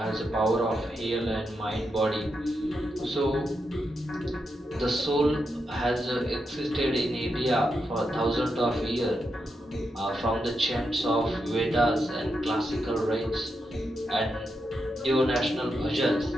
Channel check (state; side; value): normal; both; correlation 0.85